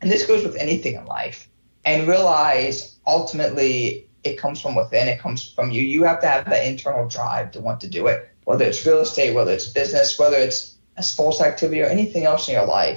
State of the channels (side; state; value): both; inverted; correlation -1.00